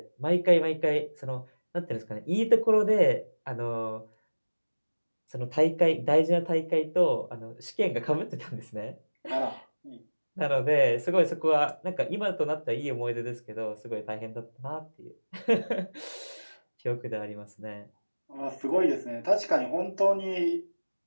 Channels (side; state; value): both; inverted; correlation -1.00